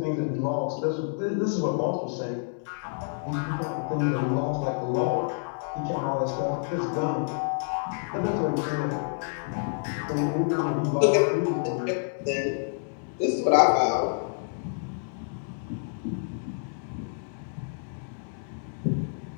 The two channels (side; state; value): right; silent; digital silence